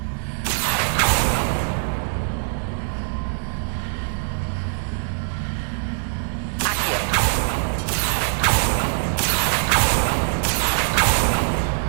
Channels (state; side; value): silent; left; 64 dB below the other